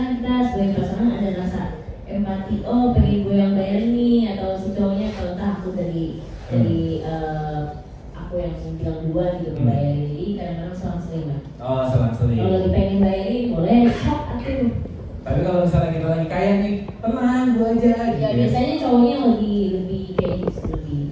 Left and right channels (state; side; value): identical; both; correlation 1.00